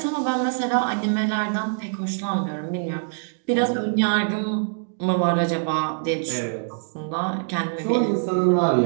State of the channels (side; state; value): left; silent; digital silence